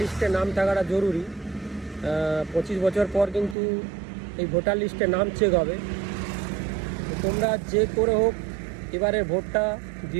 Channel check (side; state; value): left; drops out; at 3.6 s